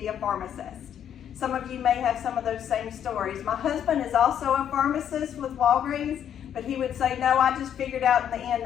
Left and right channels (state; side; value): quieter; right; 9.4 dB